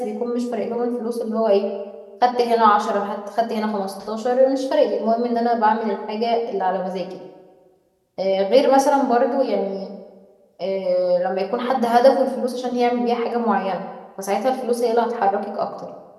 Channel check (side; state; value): both; identical; correlation 1.00